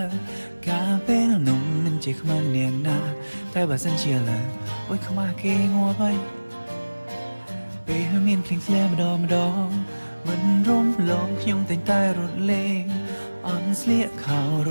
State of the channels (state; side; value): inverted; both; correlation -1.00